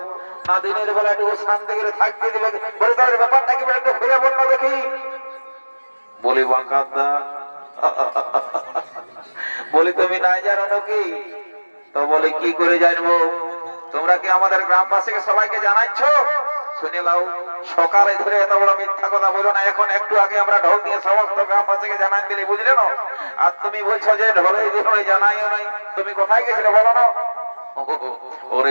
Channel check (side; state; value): both; inverted; correlation -1.00